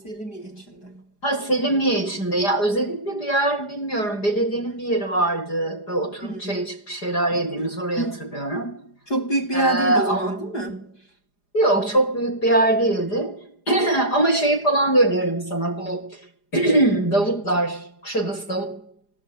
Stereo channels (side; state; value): right; late; 4.9 ms